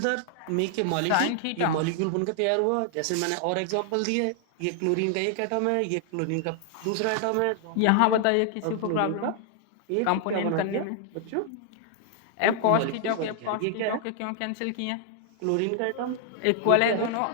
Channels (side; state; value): both; different; correlation 0.00